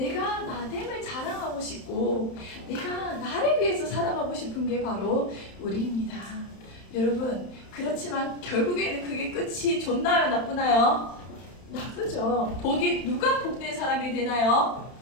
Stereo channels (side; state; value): right; late; 31 ms